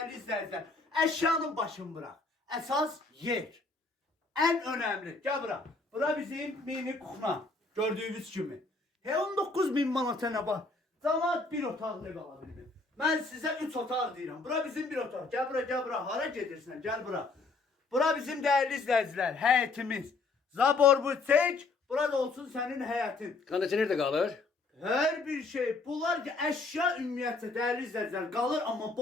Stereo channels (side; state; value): right; quieter; 3.8 dB